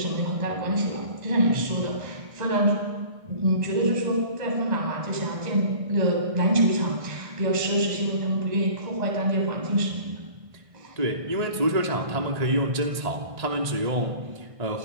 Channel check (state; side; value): late; left; 1.6 ms